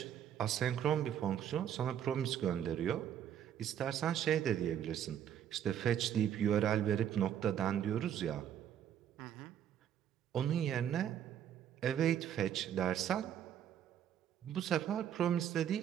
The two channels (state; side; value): quieter; left; 9.8 dB